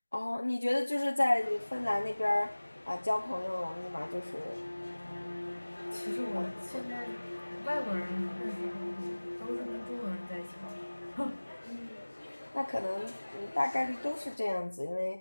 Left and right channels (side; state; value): both; inverted; correlation -1.00